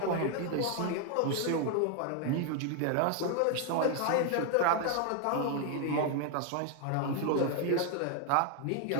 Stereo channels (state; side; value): different; both; correlation 0.00